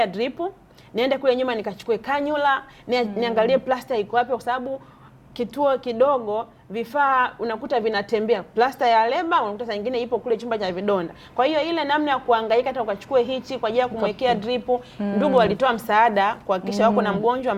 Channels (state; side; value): identical; both; correlation 1.00